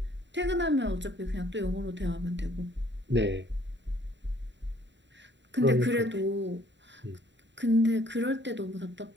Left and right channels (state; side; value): late; left; 0.52 ms